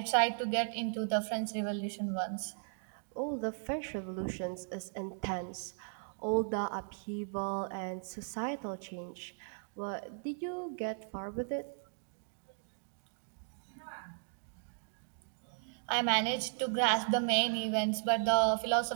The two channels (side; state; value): left; silent; digital silence